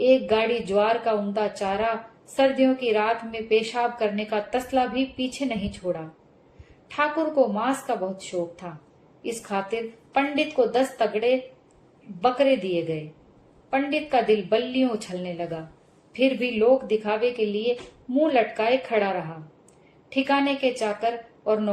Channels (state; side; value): identical; both; correlation 1.00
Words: गाड़ी ज्वार का उम्दा चारा, सर्दियों की रात में पेशाब करने का तसला भी पीछे नहीं छोड़ा। ठाकुर को मांस का बहुत शौक था। इस खातिर पंडित को 10 तगड़े बकरे दिए गए। पंडित का दिल बल्लियों उछलने लगा, फिर भी लोक दिखावे के लिए मुंह लटकाए खड़ा रहा। ठिकाने के चाकर और